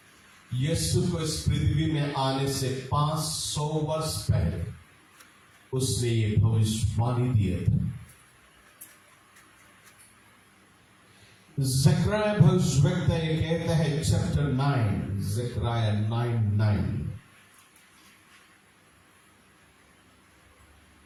यीशु को इस पृथ्वी में आने से 500 वर्ष पहले उसने ये भविष्यवाणी दिया था। ज़करिया भविष्यवक्ता ये कहता है, चैप्टर 9, ज़करिया 9:9,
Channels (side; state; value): both; identical; correlation 1.00